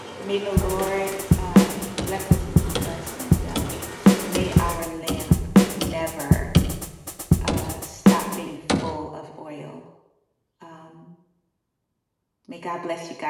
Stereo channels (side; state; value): both; identical; correlation 1.00